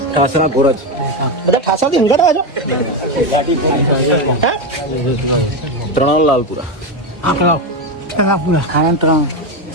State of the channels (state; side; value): normal; both; correlation 0.12